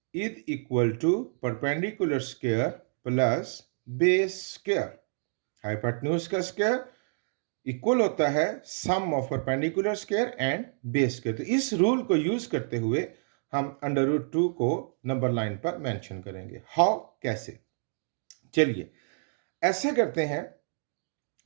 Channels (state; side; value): silent; left; digital silence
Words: is equal to perpendicular square plus base square। Hypotenuse का square equal होता है sum of perpendicular square and base square. तो इस rule को use करते हुए हम under root 2 को नंबर लाइन पर मेंशन करेंगे। हाउ, कैसे? चलिए ऐसा करते हैं,